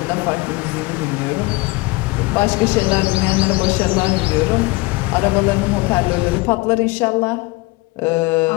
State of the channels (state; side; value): quieter; right; 23.4 dB